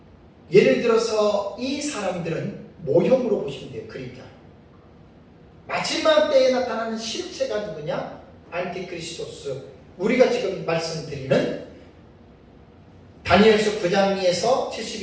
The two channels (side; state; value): both; identical; correlation 1.00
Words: 예를 들어서 이 사람들은 모형으로 보시면 돼요. 그림자. 마지막 때에 나타나는 실체가 누구냐? 안티크리스토스. 우리가 지금 말씀드리는 다니엘서 9장에서